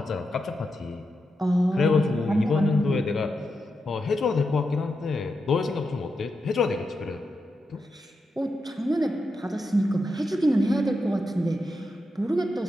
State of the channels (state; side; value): normal; both; correlation 0.86